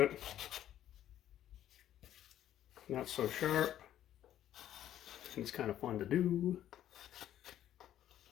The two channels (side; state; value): right; quieter; 11.7 dB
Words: it. Not so sharp. It's kind of fun to do.